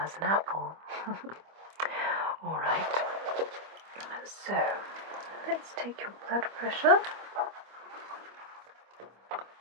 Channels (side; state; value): left; late; 25 ms